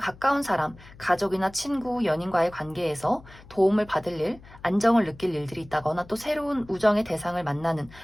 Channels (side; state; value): left; noise; hum, 21 dB below the sound